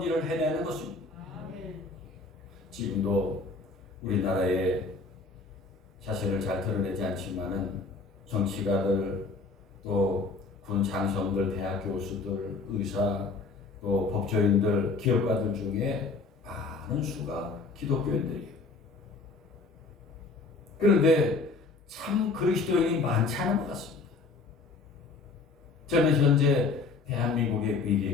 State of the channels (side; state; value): right; quieter; 4.0 dB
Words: 일을 해내는 것입니다. 지금도 우리나라에 자신을 잘 드러내지 않지만은 정치가들, 또 군 장성들, 대학 교수들, 의사, 또 법조인들, 기업가들 중에 많은 수가 기독교인들이에요. 그런데 참 그리스도인이 많지 않은 것 같습니다. 저는 현재 대한민국의